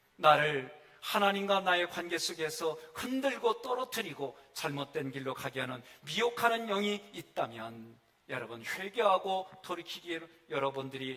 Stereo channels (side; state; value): both; identical; correlation 1.00